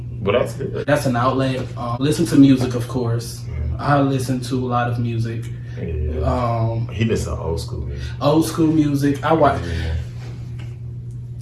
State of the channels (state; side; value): identical; both; correlation 1.00